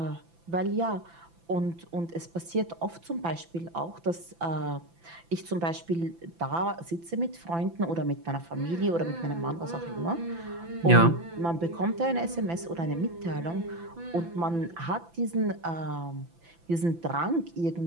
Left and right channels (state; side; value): late; left; 5.9 ms